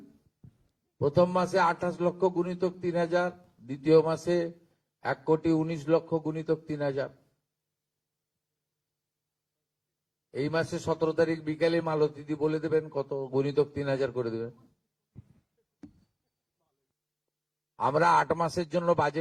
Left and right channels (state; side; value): identical; both; correlation 1.00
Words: প্রথম মাসে 28 লক্ষ গুণিতক 3000, দ্বিতীয় মাসে 1,19,00,000 গুণিতক 3000। এই মাসে 17 তারিখ বিকালে মালতীদি বলে দেবেন কত গুণিতক 3000 করে দেবেন। আমরা 8 মাসের জন্য